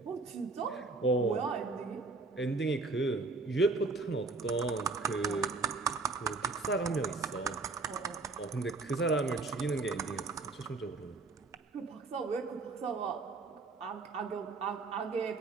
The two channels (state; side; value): quieter; left; 3.7 dB